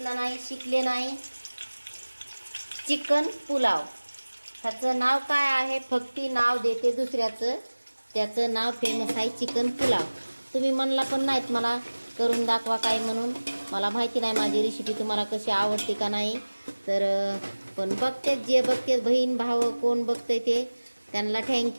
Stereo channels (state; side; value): inverted; both; correlation -1.00